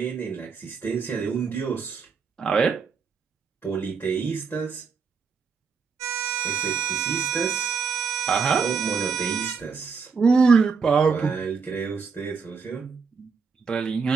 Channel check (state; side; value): quieter; left; 5.5 dB